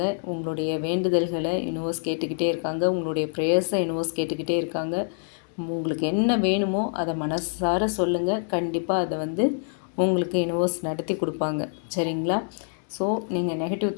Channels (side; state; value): right; silent; 61 dB below the other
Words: உங்களுடைய வேண்டுதல்களை யூனிவர்ஸ் கேட்டுக்கிட்டே இருக்காங்க. உங்களுடைய ப்ரேயர்ஸை யூனிவர்ஸ் கேட்டுக்கிட்டே இருக்காங்க. உங்களுக்கு என்ன வேணுமோ அதை மனசார சொல்லுங்கள். கண்டிப்பாக அதை வந்து உங்களுக்கு யூனிவர்ஸ் நடத்தி கொடுப்பாங்க. சரிங்களா? ஸோ நீங்கள் நெகட்டிவ்